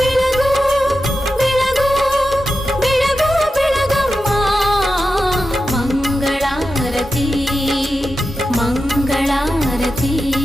ಬೆಳಗು ಬೆಳಗು ಬೆಳಗಮ್ಮ ಮಂಗಳಾರತಿ ಮಂಗಳಾರತಿ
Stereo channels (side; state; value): both; normal; correlation 0.91